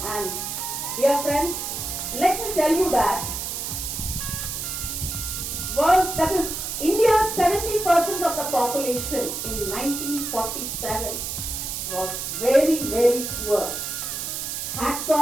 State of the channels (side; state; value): right; noise; hiss, 4 dB below the sound